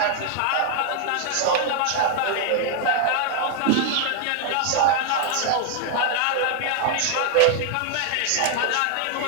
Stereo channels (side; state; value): both; different; correlation 0.00